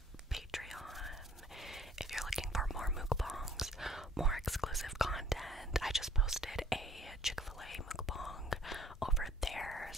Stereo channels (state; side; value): normal; both; correlation 0.58